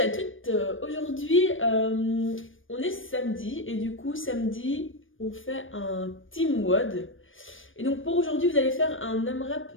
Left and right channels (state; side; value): late; right; 0.57 ms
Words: toutes. Aujourd'hui, on est samedi et du coup, samedi, on fait un team WOD. Et donc, pour aujourd'hui, vous allez faire un